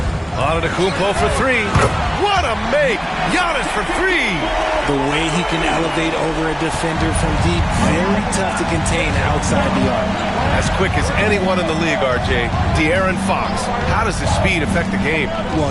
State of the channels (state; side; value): identical; both; correlation 1.00